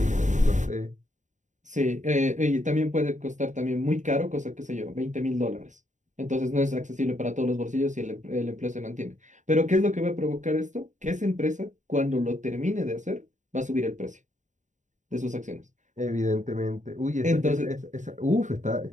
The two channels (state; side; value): late; left; 0.36 ms